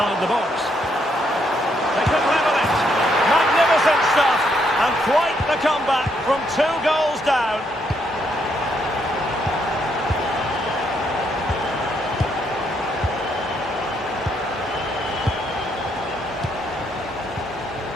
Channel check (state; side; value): normal; both; correlation 0.74